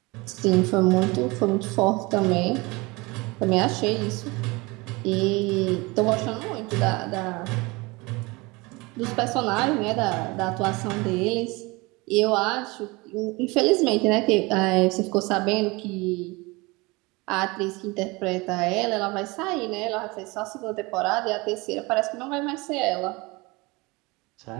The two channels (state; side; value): quieter; left; 24.5 dB